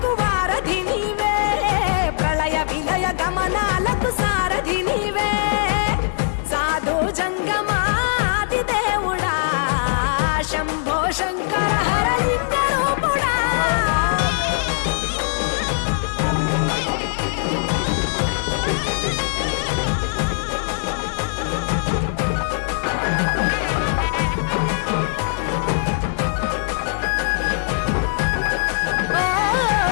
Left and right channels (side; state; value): right; silent; digital silence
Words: వారధి నీవే ప్రళయ విలయ గమనాలకు సారథి నీవే సాధు జంగమాది దేవుడా శంభో శంకర హరలింగ రూపుడా